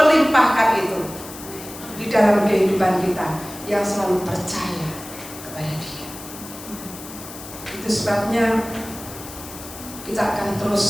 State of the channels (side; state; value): left; noise; hiss, 14 dB below the sound